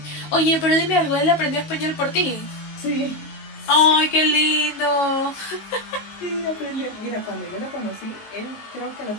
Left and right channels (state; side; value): late; right; 19 ms